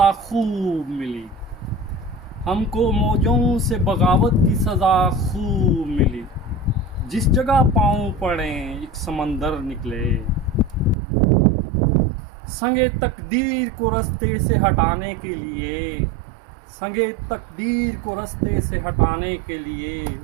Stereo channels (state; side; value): drops out; left; at 11.0 s